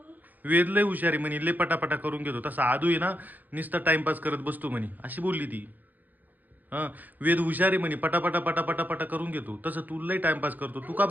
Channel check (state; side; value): late; left; 0.083 ms